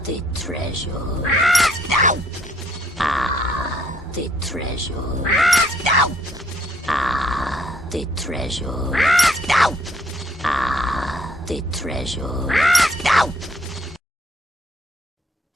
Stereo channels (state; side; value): normal; both; correlation 0.67